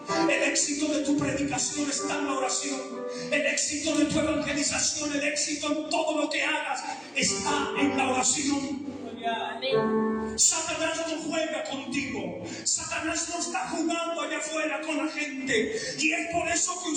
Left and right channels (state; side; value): identical; both; correlation 1.00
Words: El éxito de tu predicación está en la oración. El éxito de tu evangelización, el éxito en todo lo que hagas está en la oración. Amén. Satanás no juega contigo. Satanás no está jugando allá afuera con la gente. Y es por eso que